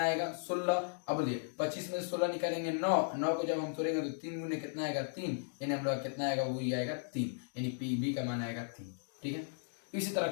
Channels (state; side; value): silent; right; digital silence